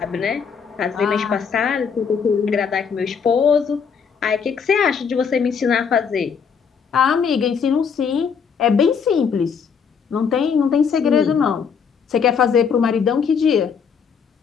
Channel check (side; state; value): right; quieter; 6.4 dB